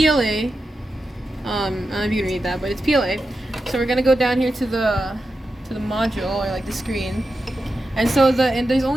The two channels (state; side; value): normal; both; correlation 0.90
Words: I don't know if you can read that, but it's PLA. So we're gonna go down here to the module, or like the screen. And so there's